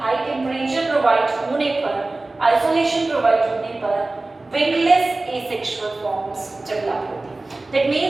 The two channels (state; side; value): quieter; left; 3.1 dB